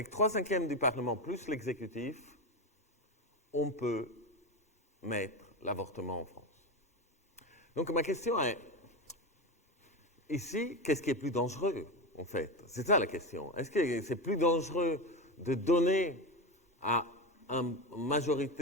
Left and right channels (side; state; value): both; normal; correlation 0.17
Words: 3/5 du Parlement plus l'exécutif, on peut mettre l'avortement en France. Donc ma question est, ici, qu'est-ce qui est plus dangereux, en fait? C'est ça la question. Est-ce que c'est plus dangereux de donner à une